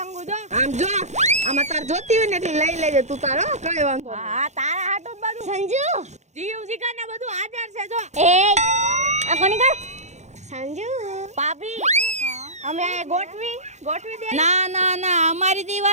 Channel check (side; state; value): left; late; 0.33 ms